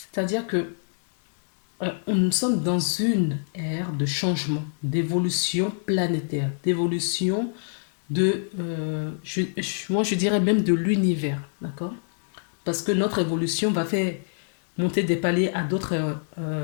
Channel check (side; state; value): right; silent; digital silence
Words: que nous sommes dans une ère de changement, d'évolution planétaire, d'évolution de... moi, je dirais même de l'univers. D'accord? Parce que notre évolution va faire monter des paliers à d'autres